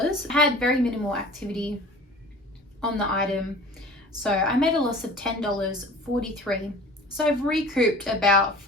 I had very minimal activity on the item. So I made a loss of $10.43. So I've recouped about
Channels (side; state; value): both; normal; correlation 0.42